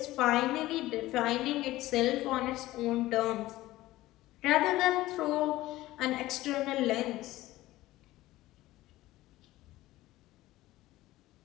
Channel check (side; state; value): right; quieter; 16.9 dB